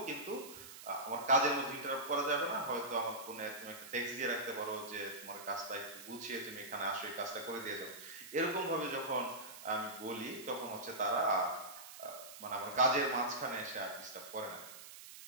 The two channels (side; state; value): right; noise; hiss, 14 dB below the sound